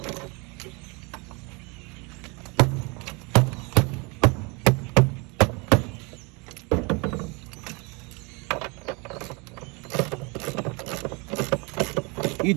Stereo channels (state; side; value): quieter; left; 29.2 dB